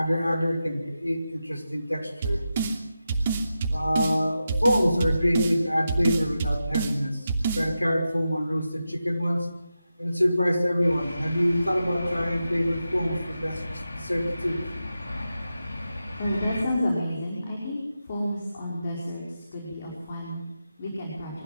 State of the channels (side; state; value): both; inverted; correlation -0.90